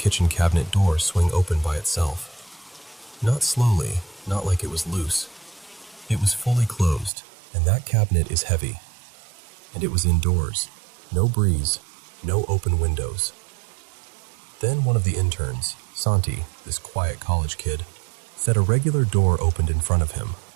cabinet door swing open by itself. Not slowly, not like it was loose. It was fully closed, and that cabinet is heavy. And it was indoors, no breeze, no open windows. Then one of the interns, Santi, this quiet college kid, said a regular door opened in front of him.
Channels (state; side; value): drops out; left; at 7.1 s